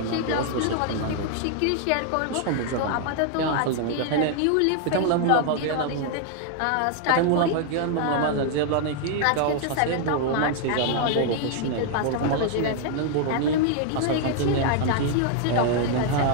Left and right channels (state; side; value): different; both; correlation 0.00